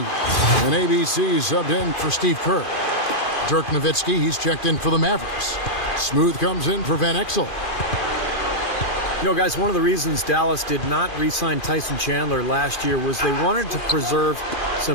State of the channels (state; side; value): late; right; 2.4 ms